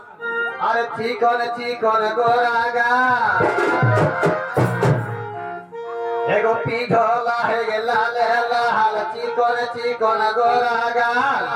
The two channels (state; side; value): identical; both; correlation 1.00